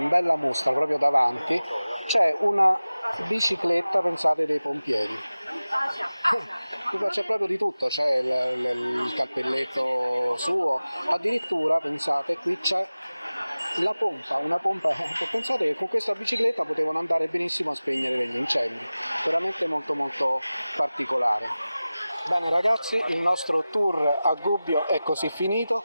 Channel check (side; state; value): both; inverted; correlation -0.97